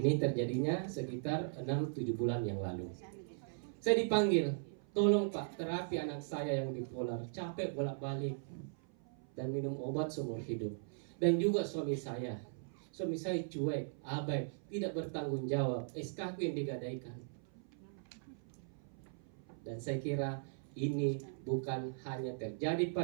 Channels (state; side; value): silent; left; 52 dB below the other